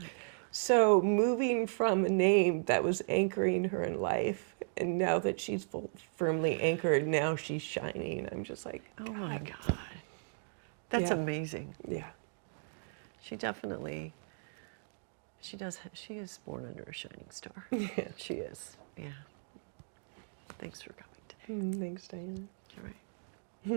So moving from a name that was anchoring her in life, and now that she's firmly anchored, now she's shining. I'm just like, oh my God. That's amazing. Yeah. She definitely, she is born under a shining star. Yeah. She is, yeah. Thanks for coming today. Thanks, Diane. You're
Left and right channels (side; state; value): left; silent; digital silence